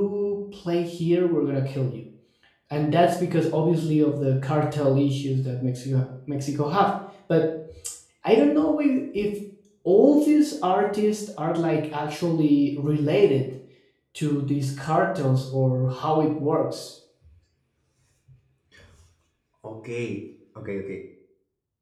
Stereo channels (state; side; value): identical; both; correlation 1.00